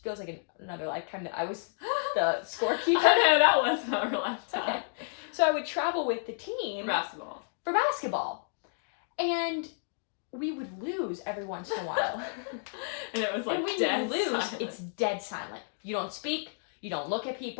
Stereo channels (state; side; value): silent; right; digital silence